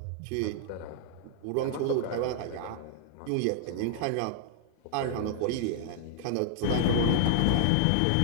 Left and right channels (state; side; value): different; both; correlation -0.01